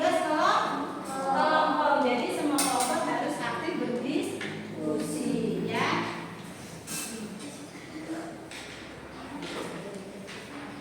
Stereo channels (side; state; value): both; identical; correlation 1.00